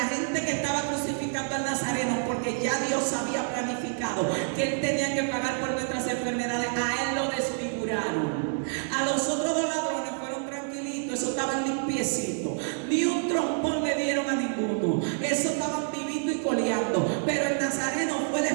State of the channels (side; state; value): left; silent; 59 dB below the other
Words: que estaba crucificando al Nazareno, porque ya Dios había planificado que Él tenía que pagar por nuestras enfermedades, a Él lo desfiguraron. A los otros dos ladrones fueron tranquilitos, esos estaban limpiecitos. Ni un trompón le dieron a ninguno. Esos estaban viviendo y coleando. Pero el Nazareno fue el